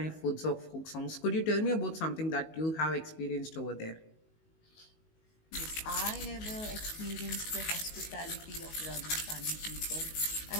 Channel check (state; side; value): late; right; 19 ms